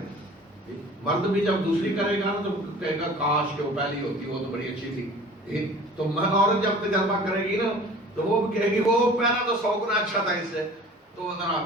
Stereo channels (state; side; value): normal; both; correlation 0.45